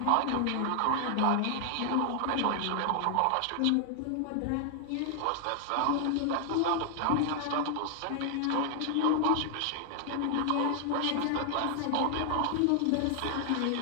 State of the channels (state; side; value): different; both; correlation 0.00